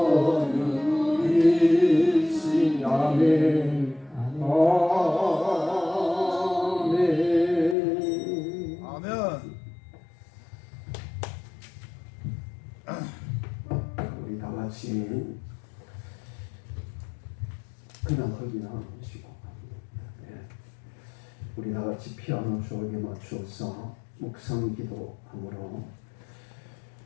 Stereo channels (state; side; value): drops out; right; at 7.8 s